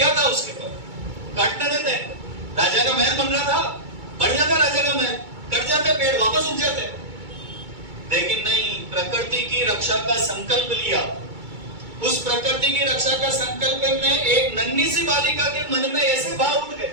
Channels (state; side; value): late; left; 2.2 ms